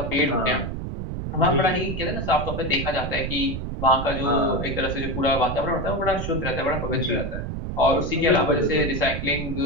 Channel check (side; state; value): right; noise; rumble, 5 dB below the sound